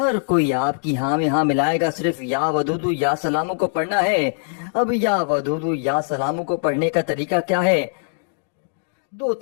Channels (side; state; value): right; silent; digital silence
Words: کوئی آپ کی ہاں میں ہاں ملائے گا، صرف یا ودودو یا سلاموں کو پڑھنا ہے۔ اب یا ودودو یا سلاموں کو پڑھنے کا طریقہ کیا ہے؟